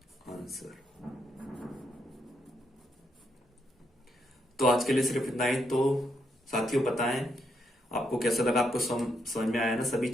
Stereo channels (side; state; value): both; normal; correlation 0.78